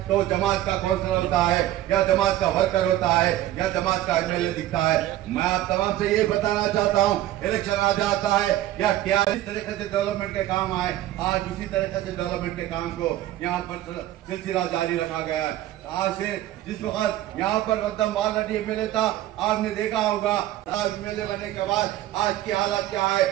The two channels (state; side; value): quieter; left; 14.0 dB